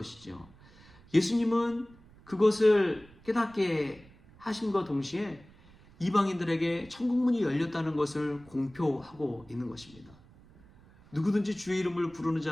예수님은 그것을 깨닫게 하심과 동시에 이방인들에게 천국문이 열렸다는 것을 공표하고 있는 것입니다. 누구든지 주의 이름을 부르는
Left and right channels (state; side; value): noise; right; rumble, 25 dB below the sound